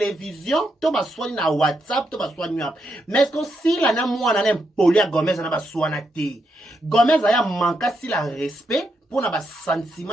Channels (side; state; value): both; normal; correlation 0.81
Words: to baswani na WhatsApp to baswani wapi mais est-ce que si la na mwana na poli ya Gomez na baswana te Gomez aya manka si la respect pour na ba